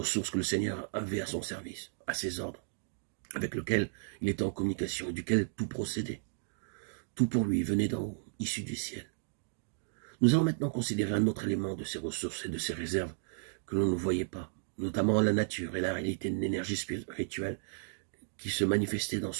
que le Seigneur avait à son service, à ses ordres, avec lequel il était en communication et duquel tout procédait. Tout pour lui venait d'en haut, issu du ciel. Nous allons maintenant considérer un autre élément de ces ressources et de ces réserves que l'on ne voyait pas, notamment la nature et la réalité d'une énergie spirituelle qui se manifestait dans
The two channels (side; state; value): left; silent; digital silence